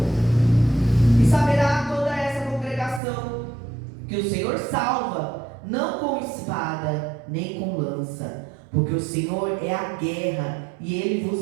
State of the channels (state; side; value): drops out; left; at 3.0 s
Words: E saberá toda essa congregação que o Senhor salva, não com espada nem com lança, porque o Senhor é a guerra, e Ele